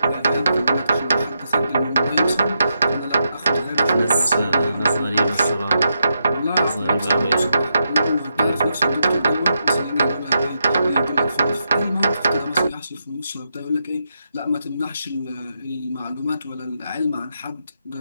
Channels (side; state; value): both; inverted; correlation -0.83